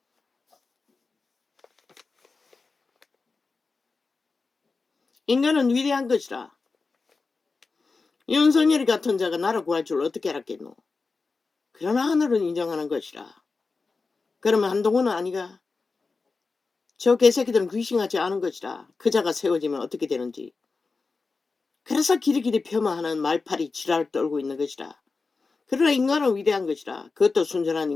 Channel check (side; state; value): right; quieter; 4.2 dB